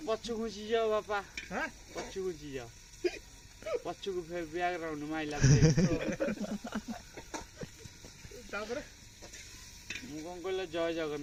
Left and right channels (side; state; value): both; identical; correlation 1.00